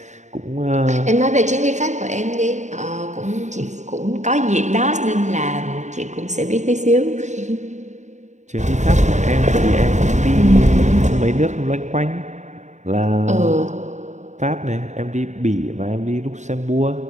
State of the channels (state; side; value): late; left; 0.34 ms